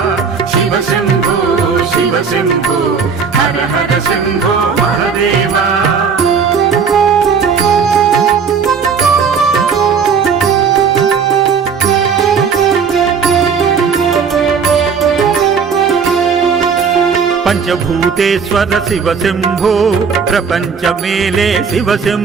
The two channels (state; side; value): quieter; left; 6.0 dB